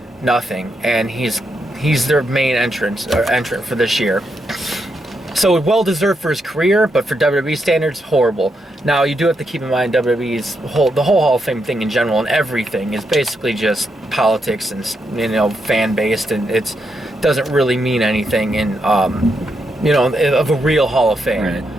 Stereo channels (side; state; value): both; normal; correlation 0.81